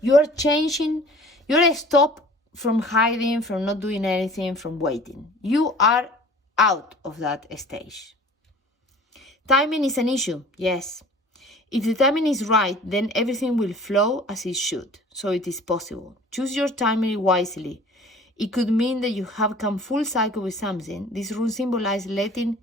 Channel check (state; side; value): normal; both; correlation 0.47